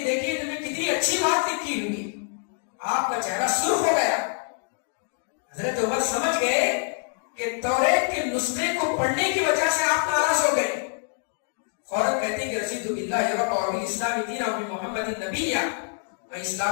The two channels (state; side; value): silent; right; 61 dB below the other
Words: دیکھیے تمہیں کتنی اچھی بات لکھی ہوئی. آپ کا چہرہ سرخ ہو گیا. حضرت عمر سمجھ گئے کہ توریت کے نسخے کو پڑھنے کی وجہ سے آپ ناراض ہو گئے. فوراً کہتے ہیں کہ رسید باللہ رب اور بالاسلام دین اور محمد النبی، میں